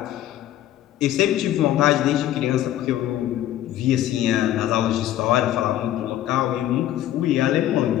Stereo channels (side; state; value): right; quieter; 12.9 dB